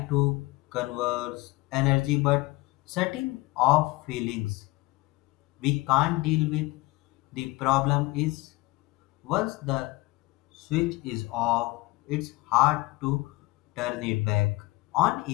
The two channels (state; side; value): quieter; right; 21.6 dB